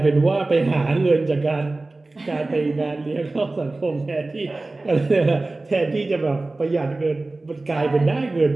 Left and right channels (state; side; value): quieter; left; 3.1 dB